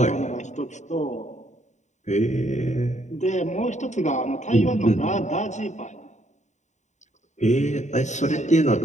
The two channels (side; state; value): right; late; 0.34 ms